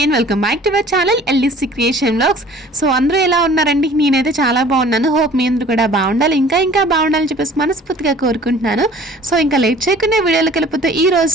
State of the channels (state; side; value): normal; both; correlation 0.49